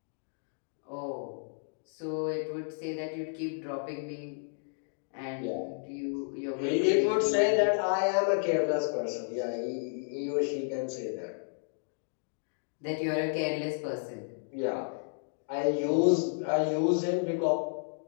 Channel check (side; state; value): right; silent; digital silence